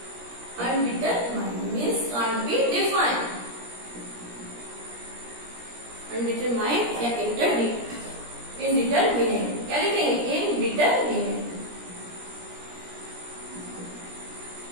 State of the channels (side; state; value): left; late; 17 ms